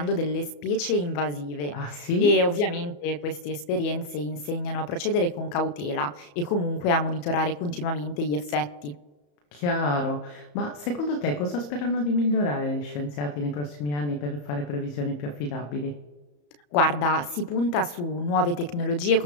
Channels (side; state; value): right; late; 34 ms